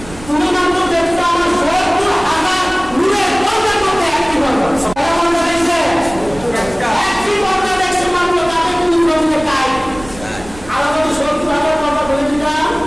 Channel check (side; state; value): right; noise; rumble, 17 dB below the sound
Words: তুমি মাত্র দেখছো আমার ৭০,০০০ নূরের পর্দা করতে একটি পর্দা দেখছে একটি পর্দা দেখছে মাত্র তাকে তুমি জমিয়ে খাই আলাদা ৭০,০০০ পর্দা বলে দিতাম